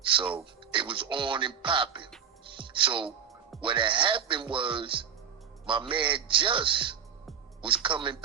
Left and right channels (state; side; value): quieter; left; 7.7 dB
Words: So it was on and popping. So what had happened was my man Just was coming